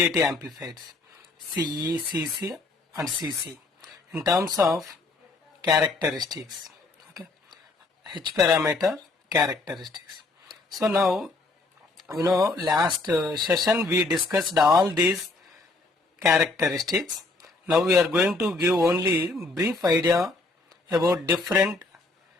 amplifiers, CE, CC and CC in terms of characteristics. Okay, H parameter characteristics. So now last session we discussed all these characteristics. Now we are going to give only brief idea about different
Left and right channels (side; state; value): right; quieter; 3.4 dB